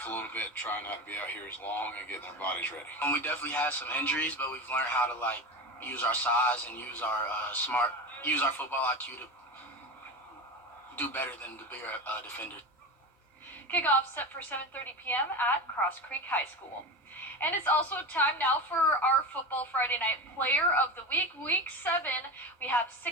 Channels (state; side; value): normal; both; correlation 0.24